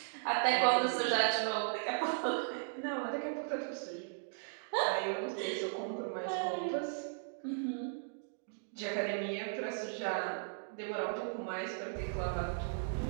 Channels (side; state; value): left; silent; digital silence